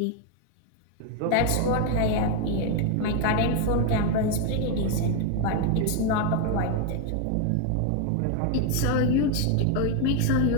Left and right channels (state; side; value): different; both; correlation 0.01